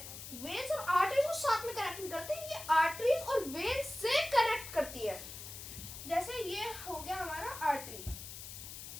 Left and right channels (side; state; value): left; noise; hiss, 11 dB below the sound